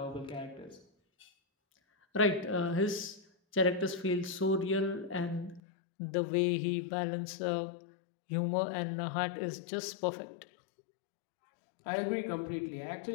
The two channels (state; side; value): drops out; right; at 5.6 s